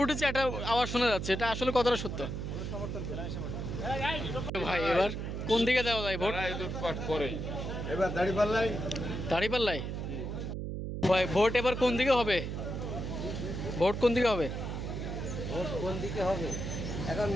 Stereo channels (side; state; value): right; noise; hum, 4 dB below the sound